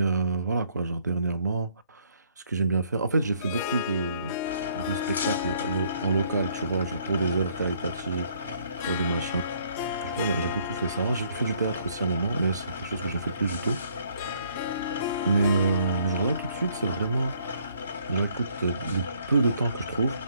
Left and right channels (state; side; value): inverted; both; correlation -0.65